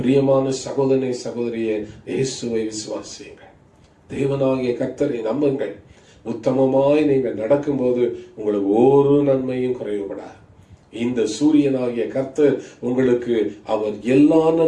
சகோதரனை, சகோதரியே, இயேசுவை விசுவாசியுங்கள். தேவனாகிய கர்த்தரை நம்புங்கள். உத்தமமாய் நீங்கள் நடக்கும்போது உங்களுக்கு ஒரு நன்மையும் குறைவுபடாது. இந்த சூரியனாகிய கர்த்தர் உங்களுக்கு அவர் எல்லா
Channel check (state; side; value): identical; both; correlation 1.00